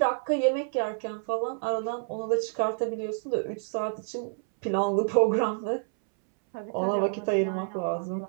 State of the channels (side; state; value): left; silent; 59 dB below the other